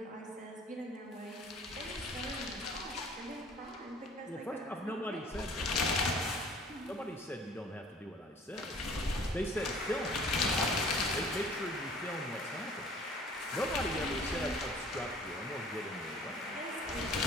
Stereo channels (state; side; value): normal; both; correlation 0.50